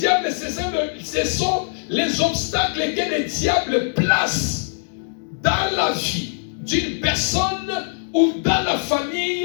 ce sont les obstacles que le diable place dans la vie d'une personne ou dans la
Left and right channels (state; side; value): silent; right; digital silence